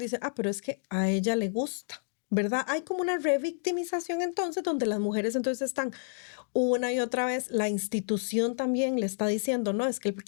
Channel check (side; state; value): right; silent; digital silence